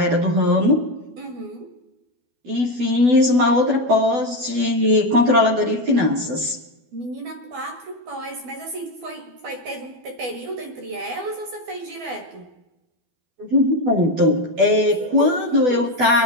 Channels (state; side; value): late; left; 12 ms